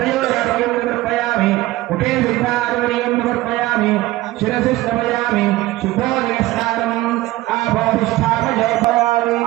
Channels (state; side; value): quieter; left; 17.7 dB